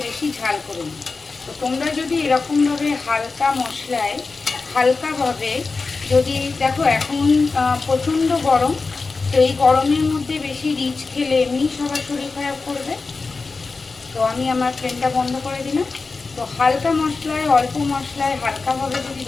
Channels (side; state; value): right; quieter; 4.1 dB